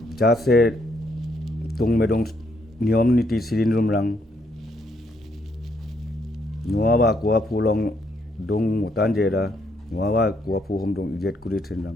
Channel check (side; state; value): both; normal; correlation 0.73